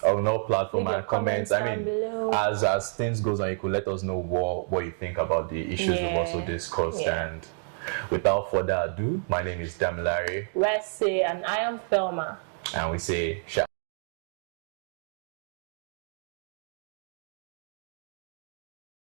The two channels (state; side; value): silent; left; 59 dB below the other